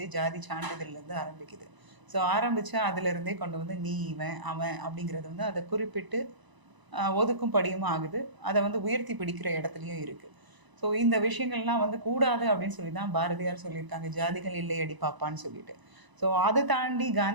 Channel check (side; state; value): left; late; 1.0 ms